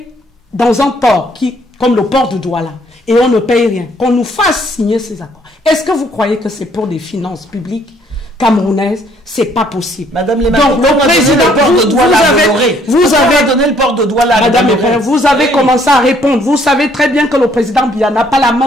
dans un port comme le port de Douala, et on ne paye rien, qu'on nous fasse signer ces accords. Est-ce que vous croyez que c'est pour des finances publiques camerounaises? C'est pas possible. Madame donc le président, vous avez donné le port de Douala. Madame, vous avez commencé à répondre. Vous savez très bien que le président Biya n'a pas la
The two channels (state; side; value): normal; both; correlation 0.64